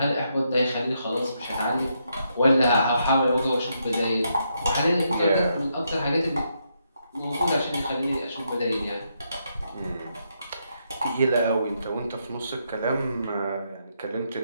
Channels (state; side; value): inverted; both; correlation -0.79